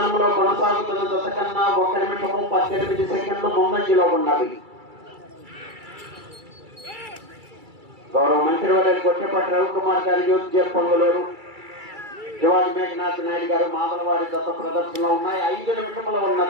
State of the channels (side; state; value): left; late; 2.3 ms